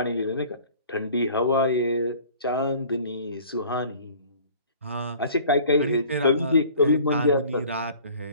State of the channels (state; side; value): inverted; both; correlation -0.49